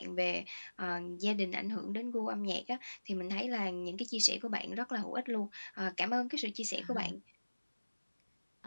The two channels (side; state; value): both; inverted; correlation -1.00